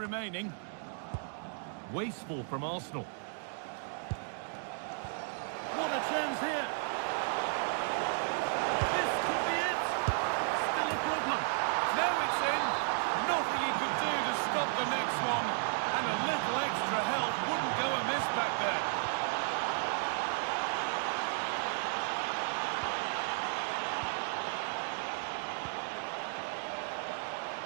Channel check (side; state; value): left; silent; 55 dB below the other